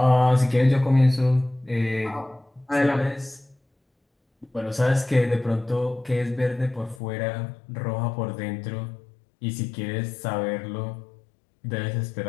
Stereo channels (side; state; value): right; drops out; at 7.0 s